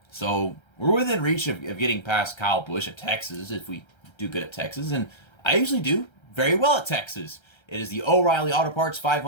So we're within reach of getting past Kyle Busch at Texas if we do good at Texas. And I usually do very well at Texas. It is the O'Reilly Auto Parts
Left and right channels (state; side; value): late; right; 1.3 ms